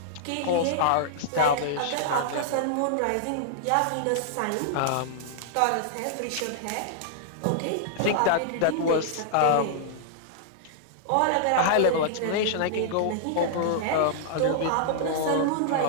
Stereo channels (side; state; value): both; different; correlation -0.01